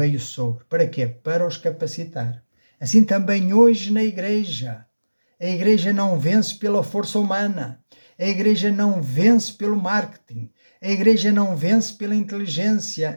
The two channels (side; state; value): both; inverted; correlation -1.00